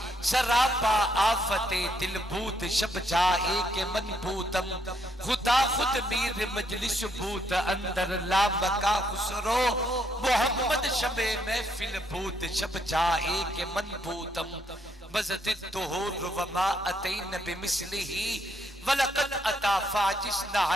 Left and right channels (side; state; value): both; normal; correlation 0.73